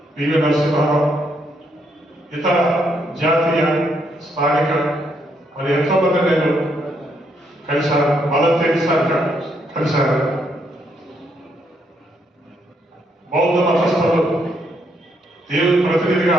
PV Narasimha Rao, ఇతర జాతీయ, స్థానిక మరి ఎంతో మంది నేను కలిశాను. మదర్ తెరీసా కలిశాను. బౌద్ధ మతస్థులు, దేవుని ప్రతినిధిగా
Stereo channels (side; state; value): both; normal; correlation 0.74